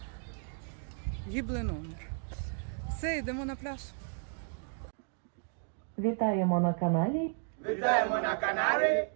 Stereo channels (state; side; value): silent; left; 55 dB below the other